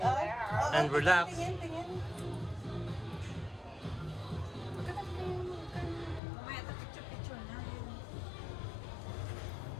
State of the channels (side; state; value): right; drops out; at 6.2 s